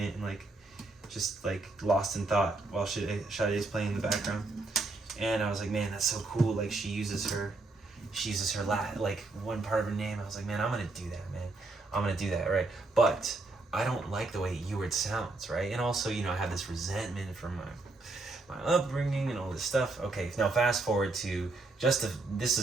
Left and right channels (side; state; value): left; quieter; 3.3 dB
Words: and like, just like lost in thought while Sade's playing in the background. And I was like, man, that's so cool. Like she uses her like one part of her name. I was like, man, I'm gonna do that, man. I'm gonna do that, right? But I don't like the way Ewart sounds, right? And also, I have this resentment from my upbringing and all this stuff. Okay, now fast forward to this